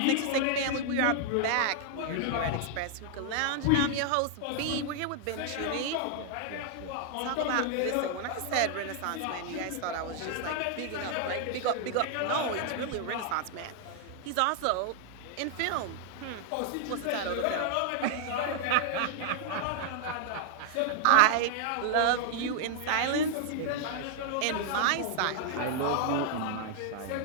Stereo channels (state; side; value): different; both; correlation 0.00